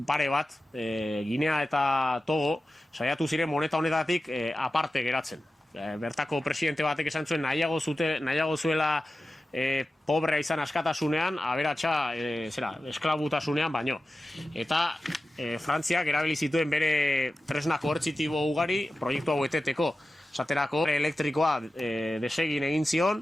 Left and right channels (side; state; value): both; normal; correlation 0.94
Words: pare bat, Ginea eta Togo, saiatu ziren moneta honetatik aparte geratzen. Bertako presidente batek esan zuen nahiago zuela pobrea izan askatasunean, aberatsa esklabutasunean baino. Eta Frantziak erabili zituen bere tresna koertzitibo ugari proiektu hau eteteko. Esaterako elektrikoa desegin egin